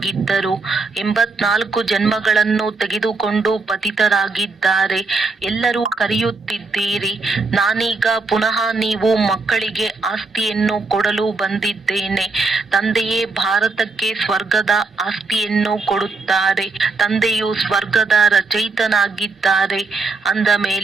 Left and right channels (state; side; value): quieter; left; 3.8 dB